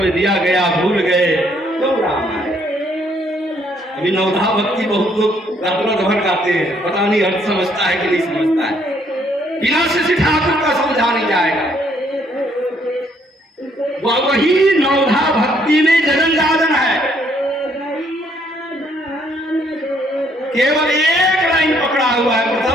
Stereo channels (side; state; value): both; normal; correlation 0.68